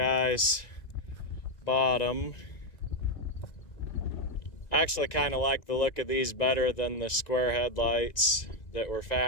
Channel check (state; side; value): late; right; 1.9 ms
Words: bought them. I actually kind of like the look of these better than the square headlights that were